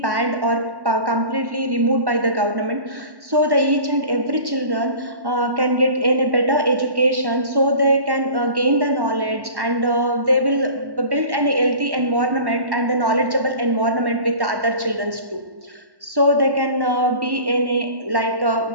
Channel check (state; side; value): late; left; 1.1 ms